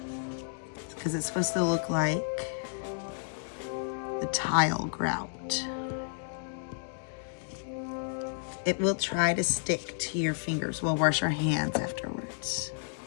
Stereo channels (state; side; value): silent; right; digital silence